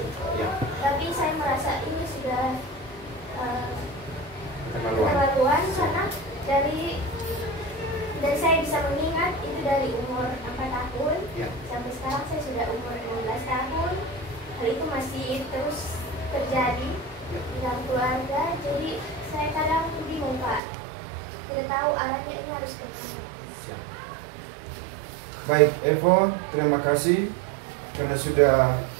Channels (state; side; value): drops out; left; at 20.6 s